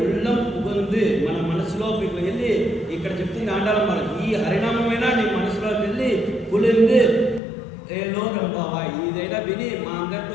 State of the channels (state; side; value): drops out; right; at 7.4 s